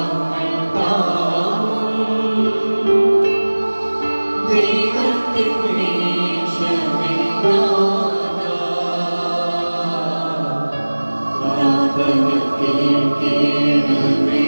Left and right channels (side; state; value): both; inverted; correlation -1.00